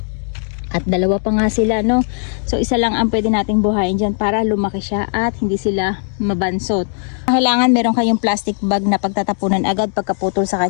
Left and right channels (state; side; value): silent; right; 63 dB below the other